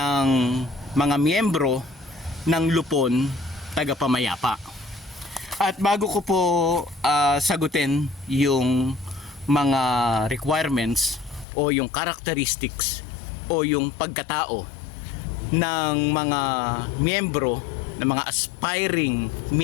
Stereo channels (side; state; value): right; drops out; at 11.5 s